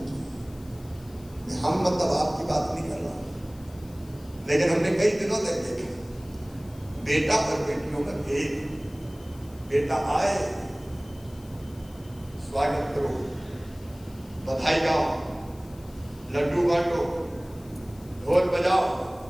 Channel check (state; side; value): noise; left; hiss, 25 dB below the sound